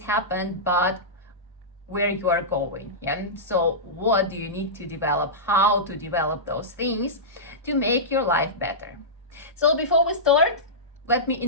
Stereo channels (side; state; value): both; normal; correlation -0.15